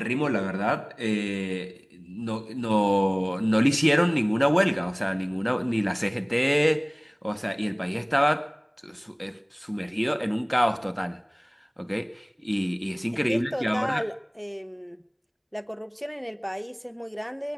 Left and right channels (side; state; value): both; identical; correlation 1.00